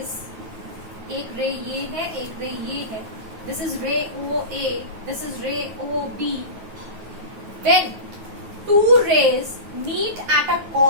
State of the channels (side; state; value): left; late; 9.4 ms